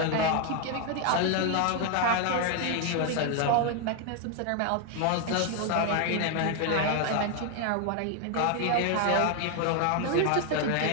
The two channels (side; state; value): both; different; correlation 0.01